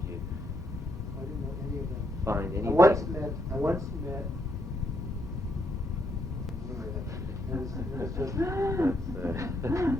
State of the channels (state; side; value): normal; both; correlation 0.75